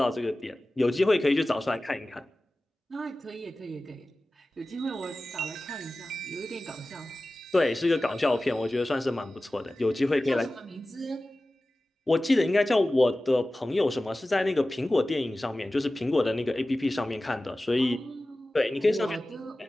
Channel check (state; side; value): normal; both; correlation 0.96